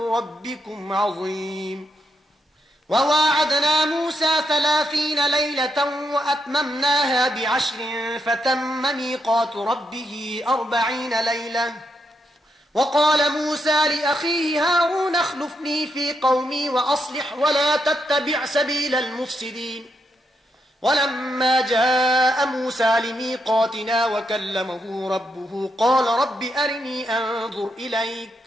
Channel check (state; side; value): normal; both; correlation 0.81